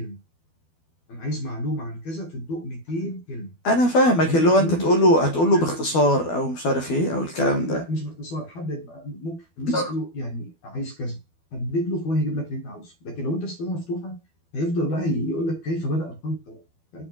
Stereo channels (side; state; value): right; late; 12 ms